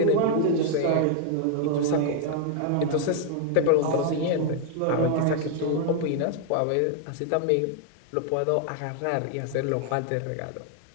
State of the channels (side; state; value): both; different; correlation 0.00